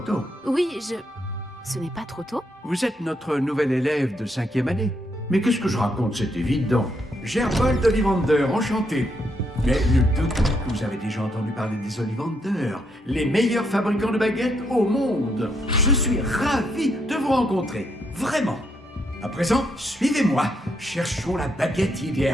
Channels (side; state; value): both; normal; correlation 0.76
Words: Oui, Ce n'est pas trop tôt? Vous êtes notre nouvel élève de 5e année. Mais qu'est-ce que je raconte, c'est évident. Gerbold Ollivander, enchanté. Mais nul doute que vous avez déjà entendu parler des Ollivander, les meilleurs fabricants de baguettes au monde. Je suis ravi de vous rencontrer, vraiment. À présent, suivez-moi. Cherchons la baguette